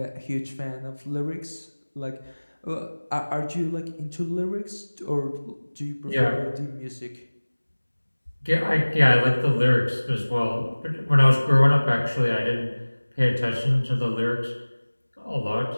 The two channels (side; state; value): both; inverted; correlation -1.00